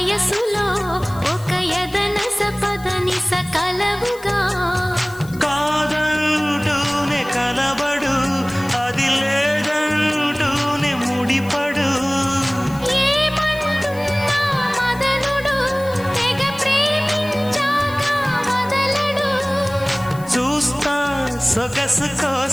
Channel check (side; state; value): left; noise; hiss, 20 dB below the sound